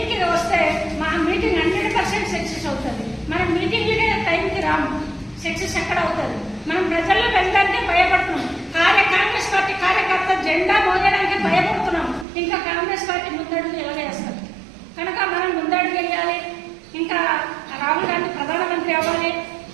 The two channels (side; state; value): left; drops out; at 12.2 s